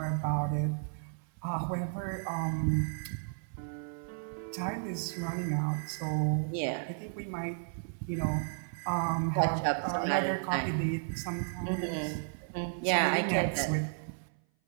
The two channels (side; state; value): left; silent; 56 dB below the other